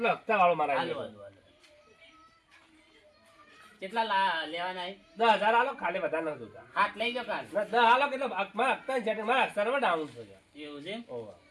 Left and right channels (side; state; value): both; identical; correlation 1.00